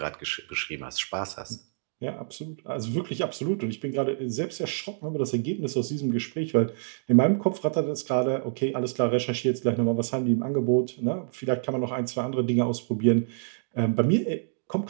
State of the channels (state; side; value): silent; left; digital silence